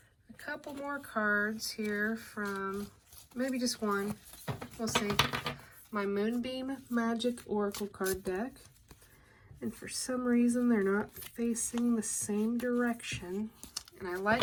a couple more cards here from, maybe just one, we'll see. My Moonbeam Magick Oracle card deck. And for some reason, they're not facing the same direction. And I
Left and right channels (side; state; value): both; identical; correlation 1.00